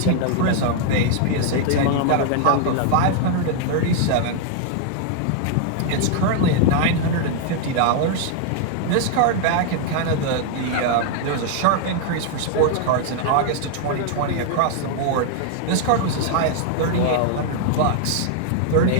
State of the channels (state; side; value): different; both; correlation 0.00